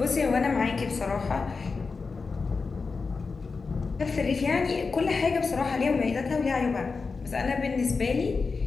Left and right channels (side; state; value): right; quieter; 4.5 dB